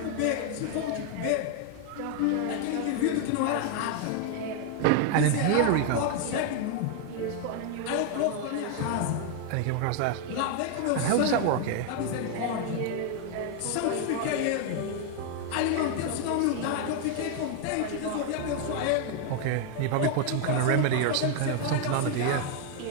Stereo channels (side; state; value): both; different; correlation 0.00